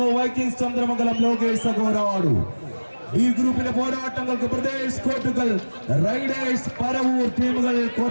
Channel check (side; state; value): both; inverted; correlation -1.00